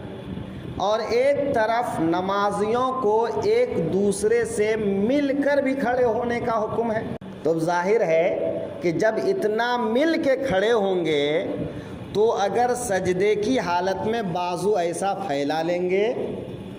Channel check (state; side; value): identical; both; correlation 1.00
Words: اور ایک طرف نمازیوں کو ایک دوسرے سے مل کر بھی کھڑے ہونے کا حکم ہے. تو ظاہر ہے کہ جب اتنا مل کے کھڑے ہوں گے تو اگر سجدے کی حالت میں بازو ایسا پھیلا لیں گے